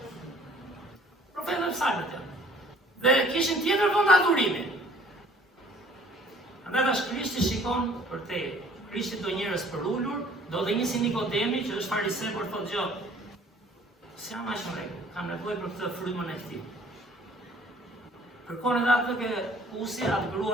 Profetët e psalmet janë. Dhe kishin tjetër vend adhurimi. Andaj tash Krishti shikon për te. Krishti do njerëz për ulur, do dhe një si Nikodemi që është fariseu por thotë gjë. S'jam aq në rregull, kam nevojë për këtë frymën e këtij. Kërkon edhe atë ke usi, atë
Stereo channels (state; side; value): normal; both; correlation 0.55